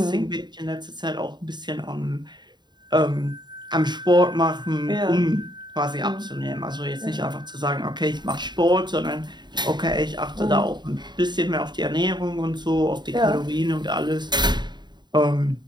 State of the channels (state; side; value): late; left; 0.21 ms